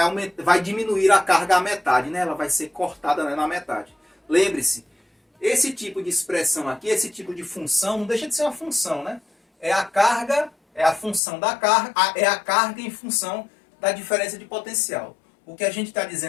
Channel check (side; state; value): right; drops out; at 11.2 s